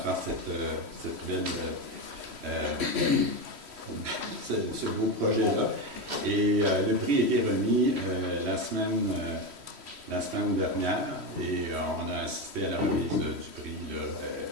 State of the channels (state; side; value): late; left; 3.1 ms